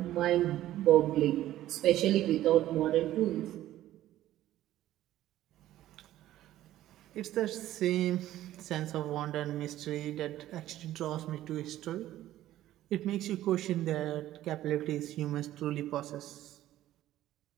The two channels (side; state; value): left; quieter; 13.8 dB